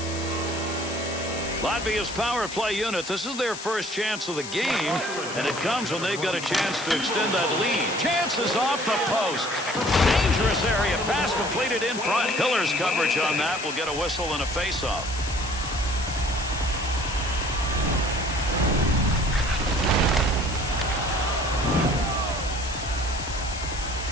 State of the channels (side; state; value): left; noise; hiss, 10 dB below the sound